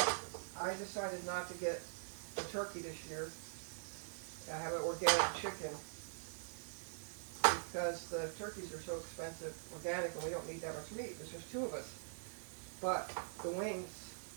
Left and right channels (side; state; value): left; silent; digital silence